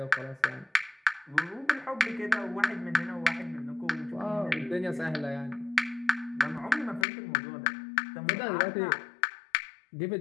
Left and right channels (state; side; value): drops out; right; at 7.1 s